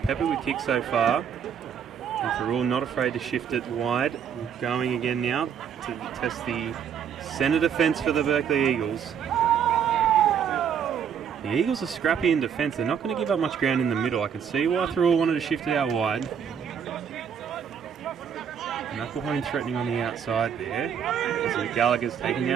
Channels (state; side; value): quieter; left; 7.9 dB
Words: with kicks so far. And Thirroul not afraid to shift it wide. Going again now to test the centre defence for the Berkeley Eagles. The Eagles are scrappy in defence. They're not going to give up much ground in the middle. I can see why Thirroul wanted to shift it out wide. Knucklehone threatening on the outside there. As Gallagher's taken